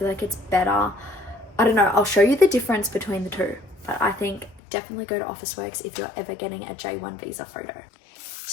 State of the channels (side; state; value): right; drops out; at 4.6 s